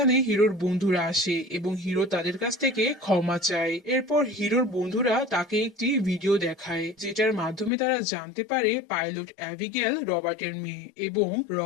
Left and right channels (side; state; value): right; drops out; at 7.7 s